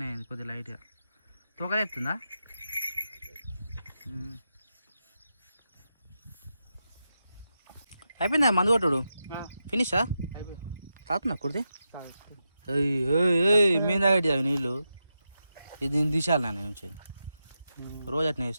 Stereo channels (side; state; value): both; inverted; correlation -0.88